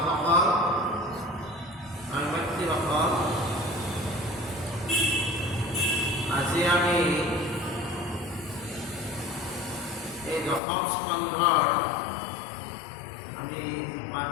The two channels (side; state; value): right; drops out; at 10.6 s